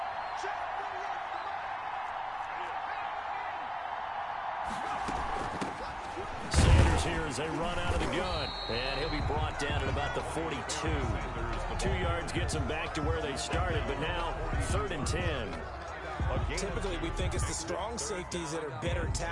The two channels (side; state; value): both; identical; correlation 1.00